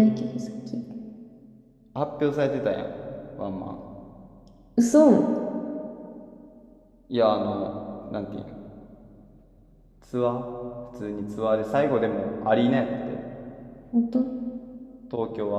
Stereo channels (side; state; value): both; identical; correlation 1.00